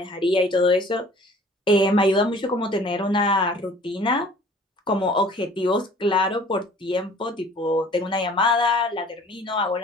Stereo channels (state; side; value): normal; both; correlation 0.51